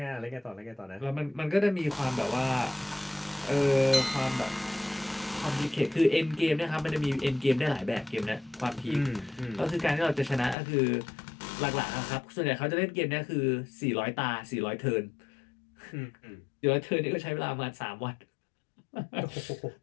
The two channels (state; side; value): drops out; right; at 10.6 s